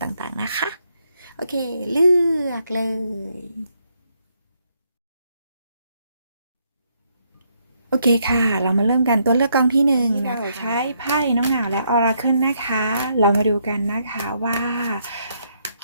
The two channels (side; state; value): both; inverted; correlation -0.74